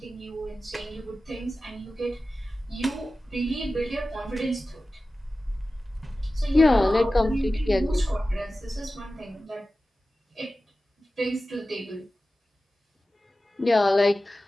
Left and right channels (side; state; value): both; normal; correlation 0.95